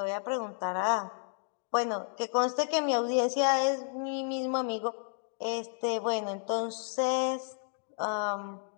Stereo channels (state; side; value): silent; right; digital silence